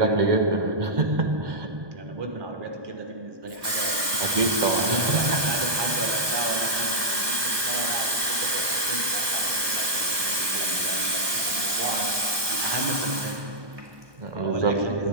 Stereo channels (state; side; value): late; left; 1.2 ms